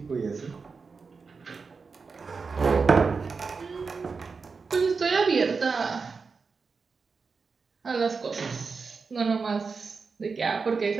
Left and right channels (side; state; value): left; quieter; 4.8 dB